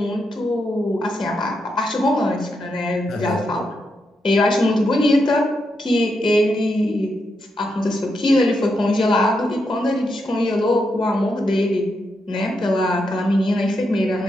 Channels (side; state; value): both; normal; correlation 0.83